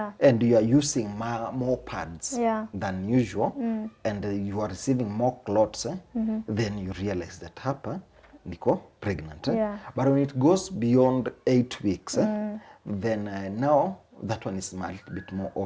and you are using more pads than usual and you are receiving more clots. Then you realize that hapa niko pregnant. But when it goes beyond 8 weeks, then now that one is a little bit more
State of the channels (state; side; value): identical; both; correlation 1.00